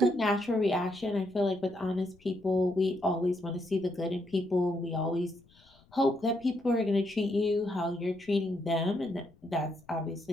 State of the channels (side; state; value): left; noise; rumble, 29 dB below the sound